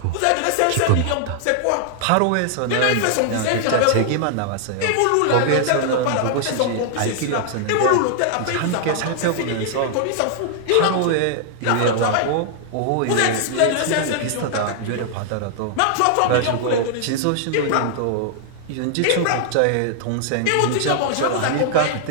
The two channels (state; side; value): different; both; correlation -0.01